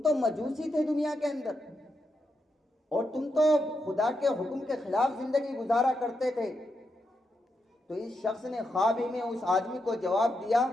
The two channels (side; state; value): both; normal; correlation 0.84